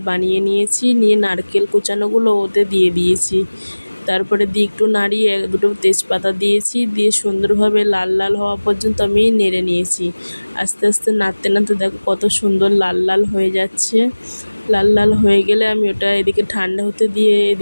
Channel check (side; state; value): both; inverted; correlation -1.00